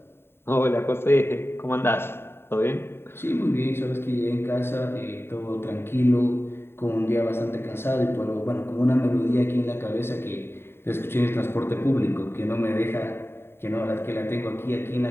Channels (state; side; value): late; right; 0.11 ms